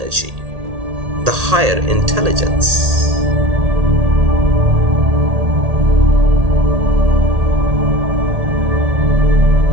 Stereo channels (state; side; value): late; left; 1.8 ms